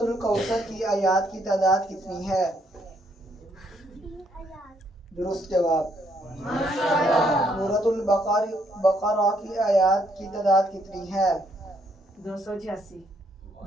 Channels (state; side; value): normal; both; correlation 0.71